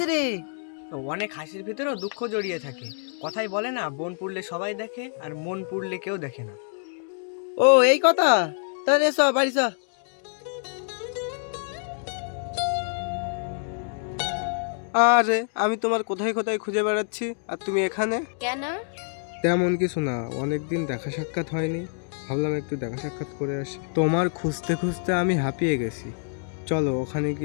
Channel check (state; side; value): silent; right; digital silence